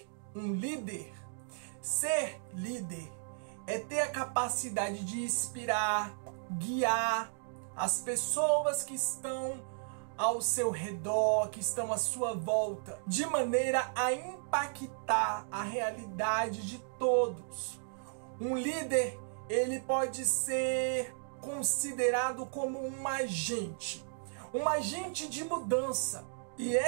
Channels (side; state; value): left; silent; digital silence